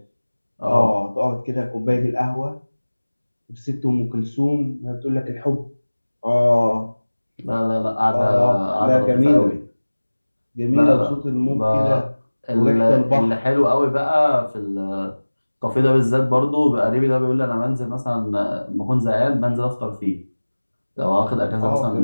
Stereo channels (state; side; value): inverted; both; correlation -1.00